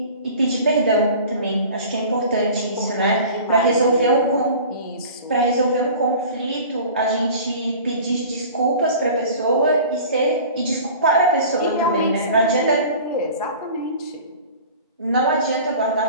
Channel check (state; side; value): inverted; both; correlation -0.41